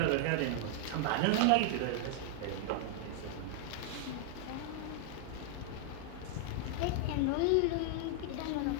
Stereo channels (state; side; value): different; both; correlation 0.00